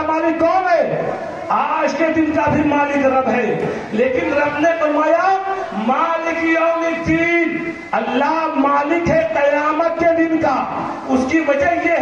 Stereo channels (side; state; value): both; identical; correlation 1.00